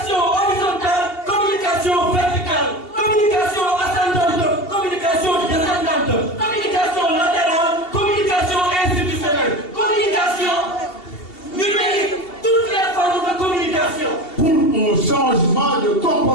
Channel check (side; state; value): right; late; 2.7 ms